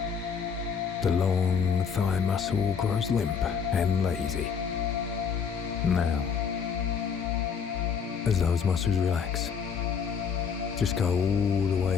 the long thigh muscle grows limp and lazy. Now, as those muscles relax, just go all the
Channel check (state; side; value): quieter; right; 6.4 dB